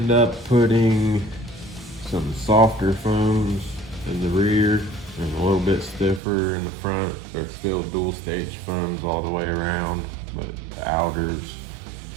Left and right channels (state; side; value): drops out; left; at 6.2 s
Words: up putting some softer foams in the rear and a little bit stiffer in the front. They're still dual stage foams all the way around, but the outer's